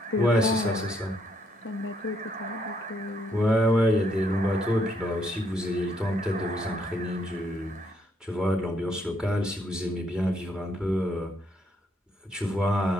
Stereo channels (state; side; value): normal; both; correlation 0.72